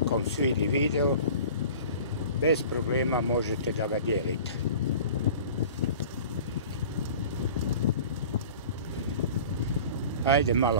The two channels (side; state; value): both; inverted; correlation -0.42